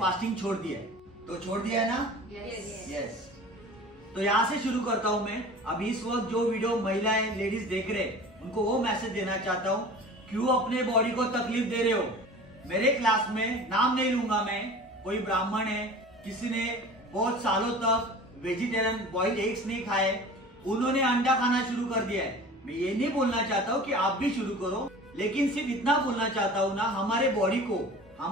छोड़ दिया है। तो छोड़ दिया है ना? यस। तो यहाँ से शुरू करता हूँ मैं। अभी इस वक्त जो वीडियो महिलाएं लेडीज देख रहे, उनको वो मैसेज देना चाहता हूँ, क्यों अपने बॉडी को तकलीफ दे रहे हो। मेरे क्लास में, नाम नहीं लूंगा मैं, कोई ब्राह्मण है, किसी ने बहुत सालों तक वेजिटेरियन बॉइल्ड एग्स नहीं खाए, उन्होंने अंडा खाना शुरू कर दिया है। मैं ये नहीं बोलना चाहता हूँ कि आप भी शुरू करो, लेकिन सिर्फ इतना बोलना चाहता हूँ ना, हमारे बॉडी को,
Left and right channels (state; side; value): normal; both; correlation 0.40